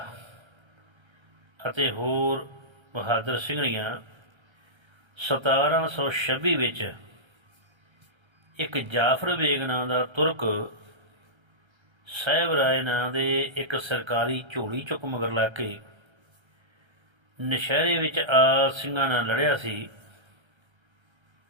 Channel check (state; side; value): late; left; 1.3 ms